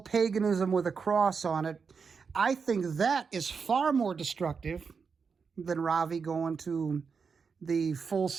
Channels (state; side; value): quieter; left; 5.6 dB